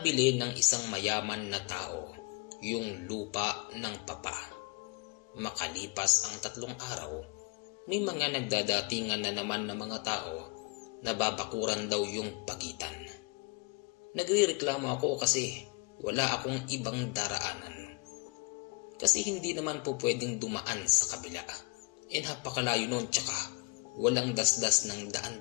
ng isang mayaman na tao yung lupa ng Papa. Makalipas ang 3 araw, may mga nagdadatingan na naman ng mga tao na babakuran daw yung pagitan. Nagrereklamo ako kasi wala akong ibang daraanan. Kasi hindi naman po pwedeng dumaan sa kabila. Napakalayo nun, tsaka walang dasdas ng daan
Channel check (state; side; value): quieter; right; 30.0 dB